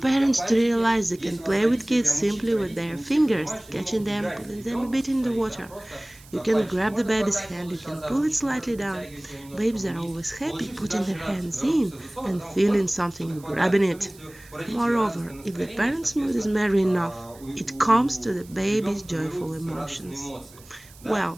to realize they can play with kids simply with their fingers, catching them, putting them a bit in the water. You can grab the baby's hand, you can pull it slightly down. Babies are always happy putting their hands in and feeling something grabbing it. Moreover, if the parent's mood is merry enough, it comes to the baby's joyful emotions.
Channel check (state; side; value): noise; right; hiss, 23 dB below the sound